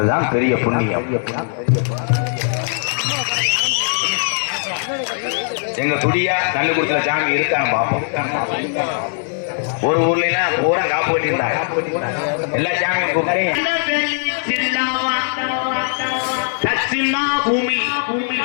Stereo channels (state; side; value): silent; right; 57 dB below the other